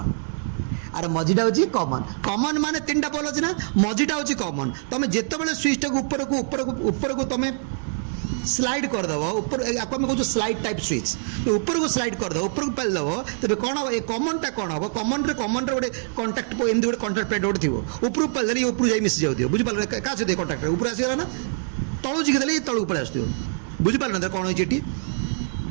आर मझीटा होची कॉमन कॉमन माने 3टा पोल अछि ना मझीटा होची कॉमन तमे जेते बेले स्विच टा ऊपर को तुम स्लाइड करदेव ऊपर आपको आम कहूँ स्लाइड टाइप स्विच तो ऊपर को स्लाइड करदेव ऊपर को पेलदेव तेज कौन हम ये कमनटा कौन हम कमन गोटे कंटाक्ट एमती गोटे कंटाक्ट प्लेट गोटे थी ऊपर को पेलदेले ऊपर जाए मिसी जाऊ बुझिपारे क्या सहित कंटाक्ट ऊपर आसगला ना तलू जिखिदेले तलू पड़े आस बुझिपारे ना कौन होती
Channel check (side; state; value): left; silent; 57 dB below the other